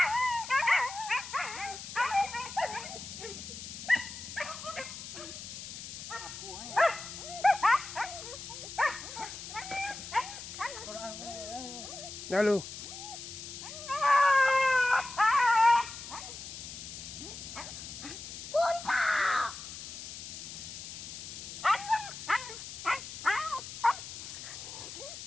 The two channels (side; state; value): left; noise; hiss, 10 dB below the sound